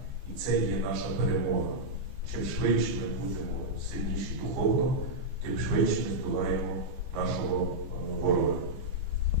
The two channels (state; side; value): late; left; 14 ms